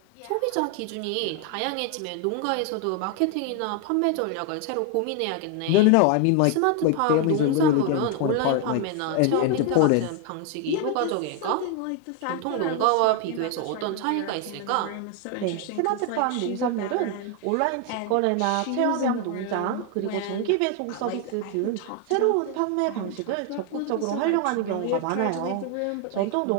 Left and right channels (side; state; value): both; different; correlation 0.01